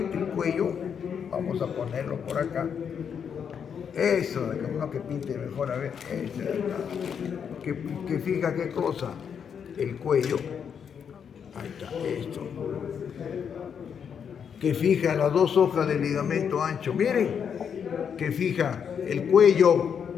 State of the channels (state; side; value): quieter; right; 7.4 dB